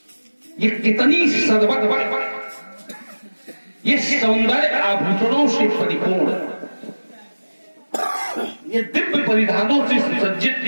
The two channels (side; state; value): both; inverted; correlation -1.00